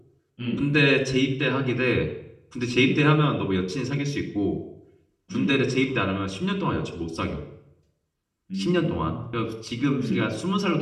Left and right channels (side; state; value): both; identical; correlation 1.00